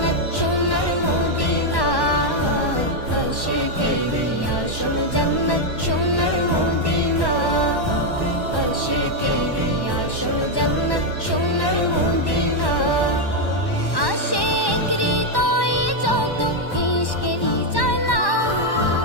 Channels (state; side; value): late; right; 1.1 ms